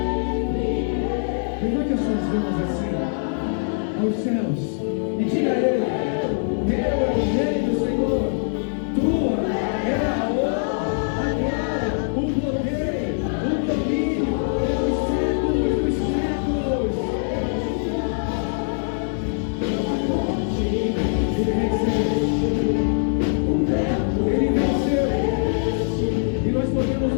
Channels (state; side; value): silent; right; 63 dB below the other